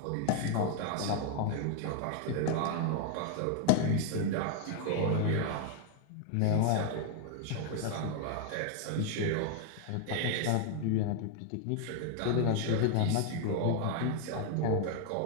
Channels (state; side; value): different; both; correlation 0.00